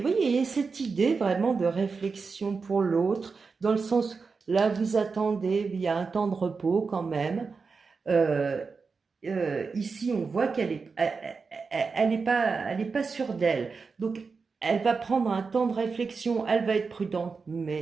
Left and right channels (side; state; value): left; quieter; 4.8 dB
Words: voyez, il y a cette idée vraiment de réflexion pour l'autre, dans le sens, là, vous attendez, il y a un temps de repos quand même. Ici, on voit qu'elle est, elle est pas sûre d'elle. Donc, elle va prendre un temps de réflexion, elle va être prudente,